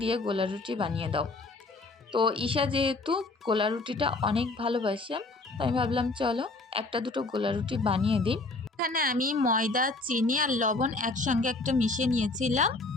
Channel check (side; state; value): right; quieter; 3.3 dB